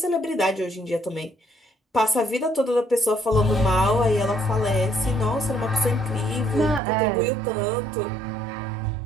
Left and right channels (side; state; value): left; drops out; at 6.8 s